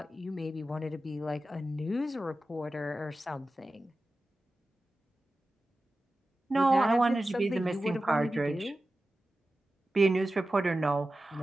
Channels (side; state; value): both; normal; correlation 0.94